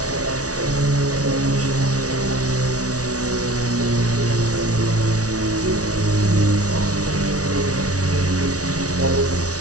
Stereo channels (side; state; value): left; late; 0.67 ms